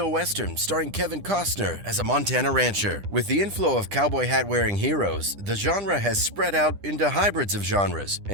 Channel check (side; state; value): left; late; 10 ms